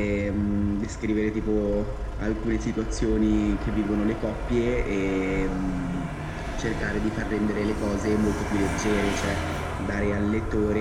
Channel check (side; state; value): both; identical; correlation 1.00